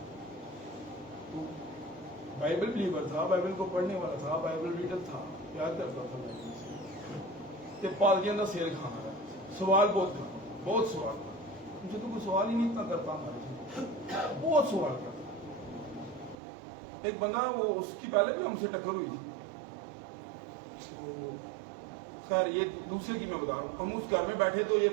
تو بائبل بلیور تھا، بائبل کو پڑھنے والا تھا، بائبل ریڈر تھا، یاد کرتا تھا بائبل سے، پادریاں کا سیل کھانا ہے، سوال بہت سوال تھا، مجھے تو کوئی سوال ہی نہیں اتنا کرتا ہمارے سے، بہت سوال کرتا، ایک بندہ وہ اس کی پہلے بھی ہم سے ٹکر ہوئی تھی، تو خیر یہ دوسرے کی میں بتا رہا ہوں. ہم اس گھر میں بیٹھے تو یہ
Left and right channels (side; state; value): left; drops out; at 16.4 s